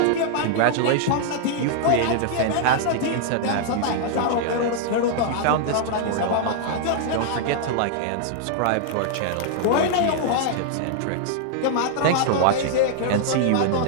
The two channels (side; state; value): both; different; correlation -0.01